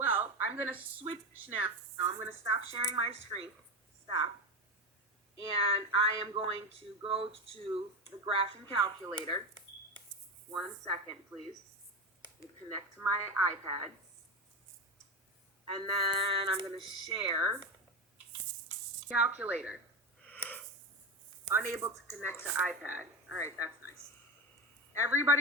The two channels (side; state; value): both; normal; correlation 0.19